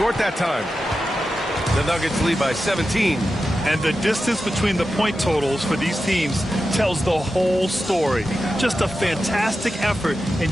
that time. The Nuggets lead by 17. And the distance between the point totals for these teams tells the whole story. Just a fantastic effort, and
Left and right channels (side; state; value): both; normal; correlation 0.91